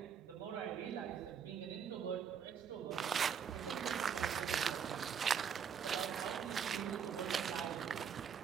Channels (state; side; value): quieter; left; 7.4 dB